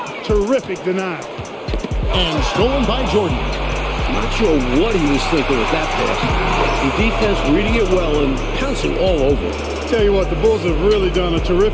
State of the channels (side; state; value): both; identical; correlation 1.00